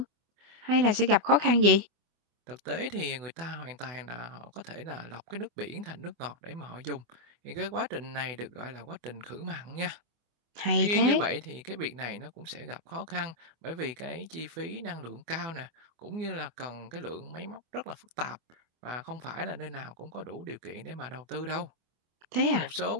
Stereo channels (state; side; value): late; left; 25 ms